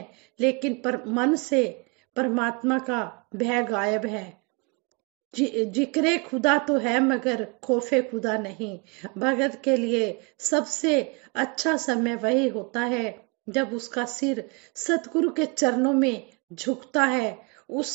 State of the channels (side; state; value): left; quieter; 31.6 dB